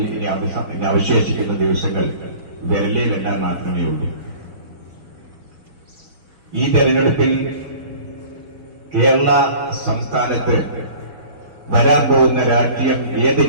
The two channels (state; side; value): late; left; 5.6 ms